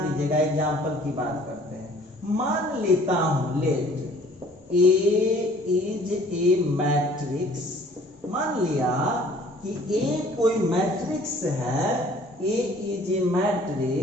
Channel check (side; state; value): both; normal; correlation 0.55